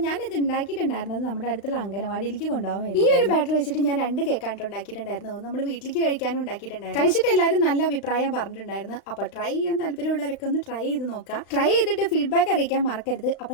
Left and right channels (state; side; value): late; right; 35 ms